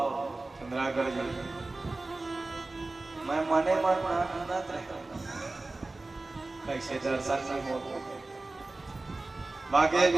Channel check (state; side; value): quieter; left; 3.2 dB